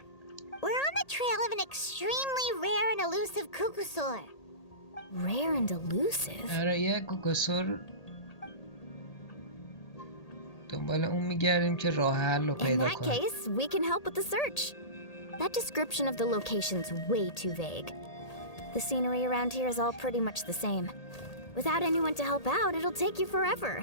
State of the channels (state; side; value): late; right; 1.8 ms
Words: We're on the trail of an extremely rare and elusive Kukusaur. Rare and elusive? آره یه کوکاسور دنبال اون میگردیم که راه حل رو In پیدا that کنیم. case, we can help with the search. That description of the location's way too vague. The scenery around here is all pretty much the same. Without anyone to help out, it'll take you forever.